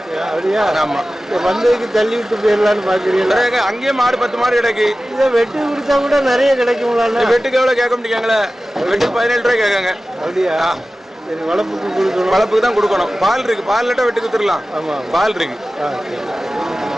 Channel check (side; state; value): both; normal; correlation 0.96